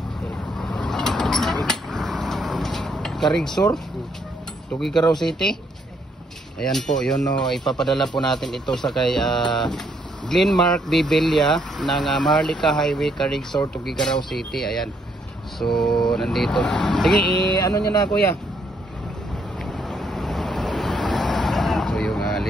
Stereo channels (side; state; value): both; normal; correlation 0.71